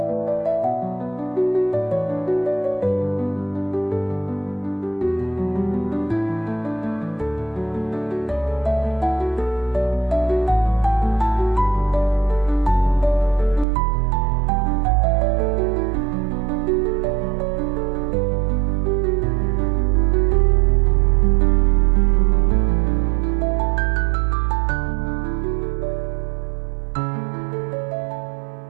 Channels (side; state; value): left; drops out; at 13.7 s